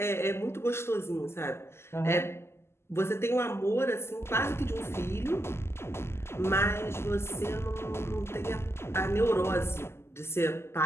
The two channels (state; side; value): late; right; 0.12 ms